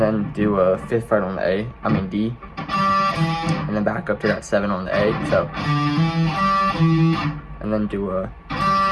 then do a 5th fret on the D, and then back up to that 7 on the A, so, and then do a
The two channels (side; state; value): both; identical; correlation 1.00